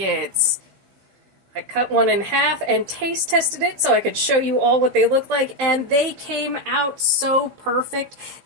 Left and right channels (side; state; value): left; late; 15 ms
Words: I cut one in half and taste tested it so I could show you all what they look like, and they came out so perfect.